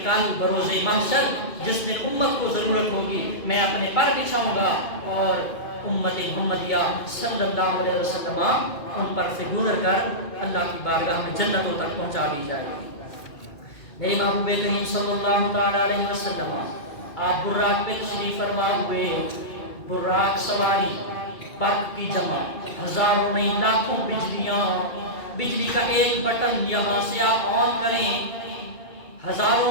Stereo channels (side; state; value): right; late; 2.2 ms